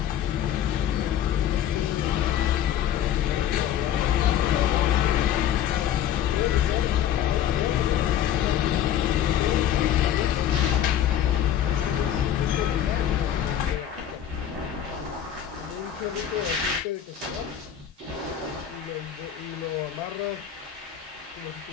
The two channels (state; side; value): quieter; right; 10.4 dB